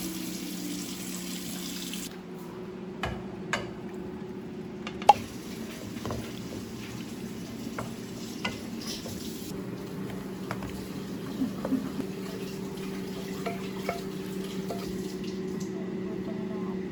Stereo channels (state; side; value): identical; both; correlation 1.00